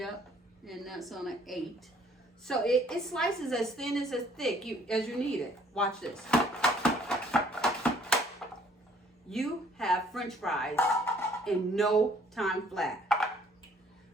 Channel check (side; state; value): both; normal; correlation 0.61